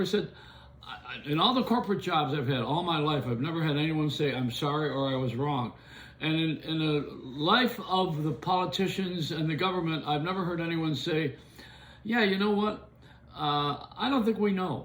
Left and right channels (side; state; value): both; identical; correlation 1.00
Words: said, in all the corporate jobs I've had all my life, I've never had anyone say, I'm sorry or I was wrong. And in the life of the politicians and the government, I've never heard anyone say, yeah, you know what? I don't think we